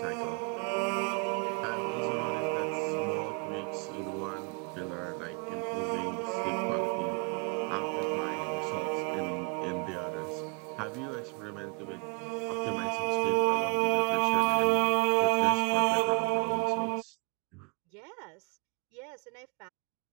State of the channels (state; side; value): quieter; left; 35.9 dB